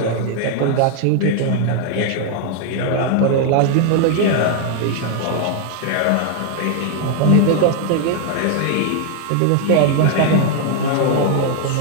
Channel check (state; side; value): different; both; correlation 0.00